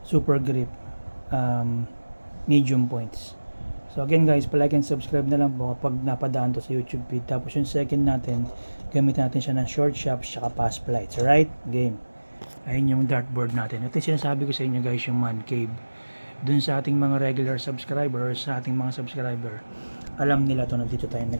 super grip medium points. So again guys, palike and subscribe na lang po kapag napadaan to sa YouTube feed. Tapos yung second natin, gamitin natin siya ng short shops tsaka fast flights. Alright? Game. Ayun yung dartboard natin. Ito yung sinasabi ko sa inyo guys, yung man cave. Dun sa ating mga regular subscriber or sa ating mga subscriber, alam nila to na dito tayo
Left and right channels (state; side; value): inverted; both; correlation -1.00